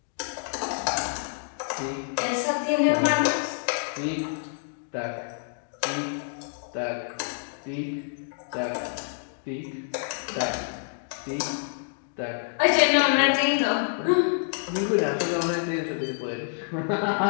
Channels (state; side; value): silent; right; digital silence